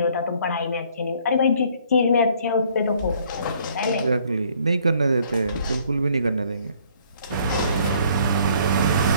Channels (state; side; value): inverted; both; correlation -0.61